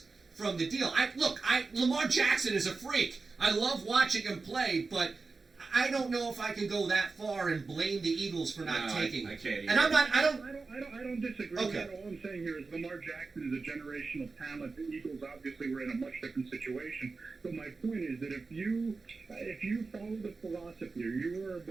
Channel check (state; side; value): quieter; left; 4.1 dB